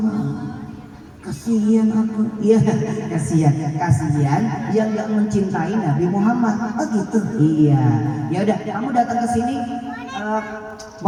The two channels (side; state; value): both; identical; correlation 1.00